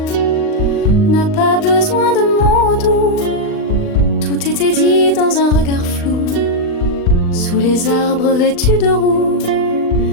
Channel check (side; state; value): right; late; 39 ms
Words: n'a pas besoin de mots doux, tout était dit dans un regard flou, sous les arbres vêtus de roux.